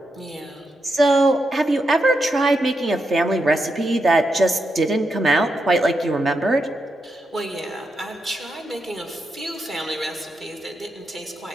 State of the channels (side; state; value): both; normal; correlation 0.84